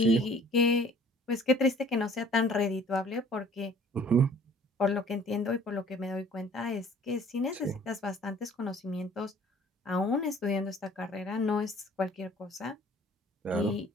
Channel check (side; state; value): both; normal; correlation 0.53